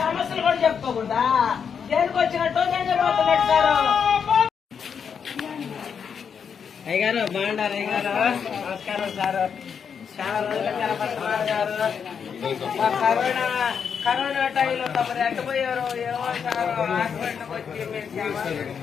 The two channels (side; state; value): right; quieter; 6.9 dB